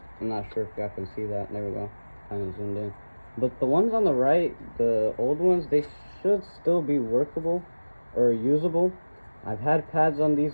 I'm not sure if y'all can see that. There we go, kind of zoomed in. But the ones on the right, the old ones, they should still be workable or usable. I've had pads on these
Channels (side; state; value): both; inverted; correlation -1.00